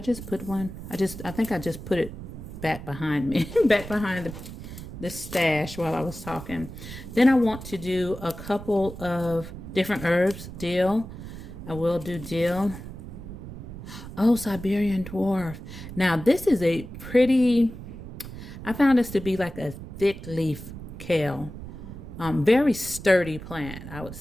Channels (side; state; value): right; noise; rumble, 12 dB below the sound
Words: put one? I think I just put it back behind me, back behind the stash while I was talking. Then I want to do a couple of different herbs. Dill. I will do dill. Oh, Siberian dwarf. Now, this is a pretty, I found this to be like a thick leaf kale. Very sturdy plant, I would